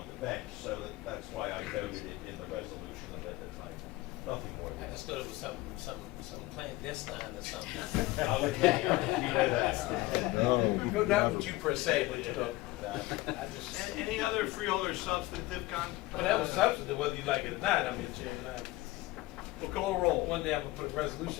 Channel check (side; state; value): right; quieter; 19.0 dB